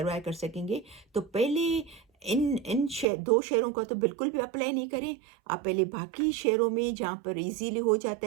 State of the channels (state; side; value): drops out; left; at 3.1 s